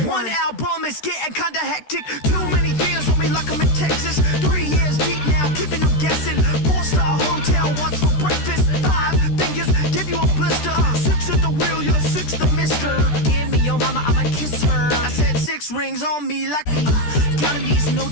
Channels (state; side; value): late; right; 13 ms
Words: One album is getting kinda hectic. Too many fans on me like I'm in Texas. 3 years deep now, keeping them guessing. 4-star hotel, what's for breakfast? 5 fingers, give you a blister. 6 at the wheel, you're 6 the mister. Give me your mama, I'ma kiss her. I said 6 rings on me like counting these